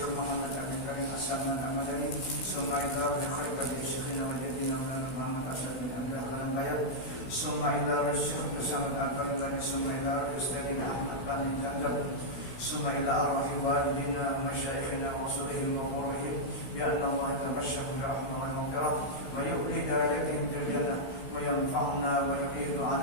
محمد أبي كريم السلمان المدني ثم إلى بخلفة شيخنا وجدنا محمد أسد بن عبد الله البيض ثم إلى الشيخ محمد البربري ثم إلى أستاذنا أحمد بن زنزب ثم إلى أرواح والدينا ومشايخنا وصولهم وقربهم بأن الله يتبشر برحمة ومغفرة ويؤتي درجاتهم في الجنة وينفعنا ويعيد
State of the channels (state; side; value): late; right; 16 ms